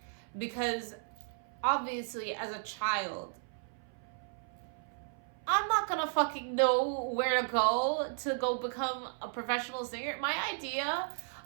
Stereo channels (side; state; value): left; silent; 55 dB below the other